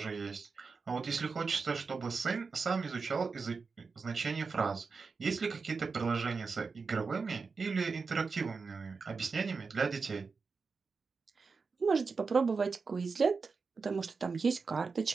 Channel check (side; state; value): left; quieter; 4.8 dB